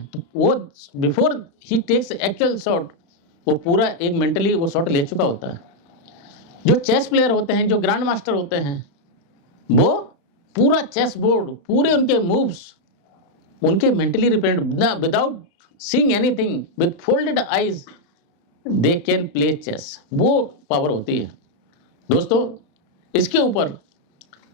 तो वो बिफोर ही टेक्स एक्चुअल शॉट, वो पूरा एक मेंटली वो शॉट ले चुका होता है। जो चेस प्लेयर होते हैं, जो ग्रैंड मास्टर होते हैं, वो पूरा चेस बोर्ड, पूरे उनके मूव्स उनके mentally represent, without seeing anything, with folded eyes they can play chess. वो पावर होती है। दोस्तों, इसके ऊपर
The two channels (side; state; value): right; late; 35 ms